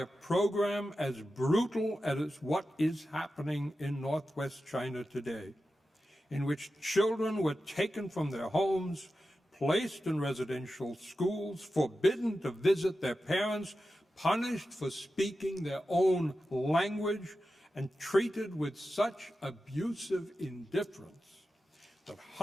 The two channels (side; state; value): both; normal; correlation 0.92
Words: program as brutal as what is happening in northwest China today, in which children were taken from their homes, placed in residential schools, forbidden to visit their parents, punished for speaking their own language, and treated with such abusive indifference that